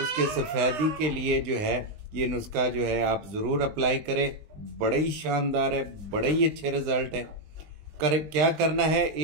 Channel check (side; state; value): left; late; 20 ms